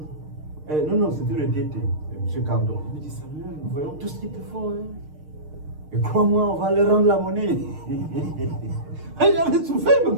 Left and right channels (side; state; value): left; late; 6.5 ms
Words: non, c'était le DT, M. Cardon. Il me dit, Samuel, nous voyons tout ce qu'ils te font. Hein. Et crois-moi, on va leur rendre la monnaie. J'avais souffert, il me